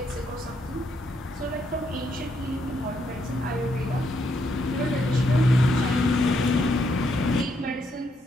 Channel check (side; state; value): both; normal; correlation 0.76